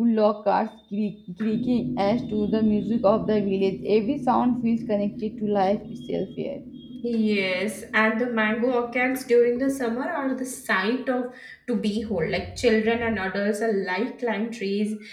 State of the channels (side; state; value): both; identical; correlation 1.00